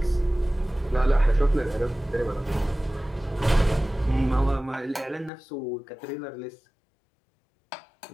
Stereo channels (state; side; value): drops out; right; at 5.3 s